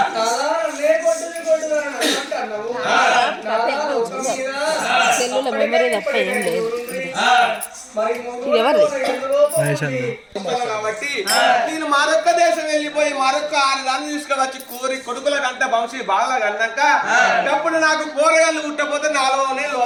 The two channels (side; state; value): both; identical; correlation 1.00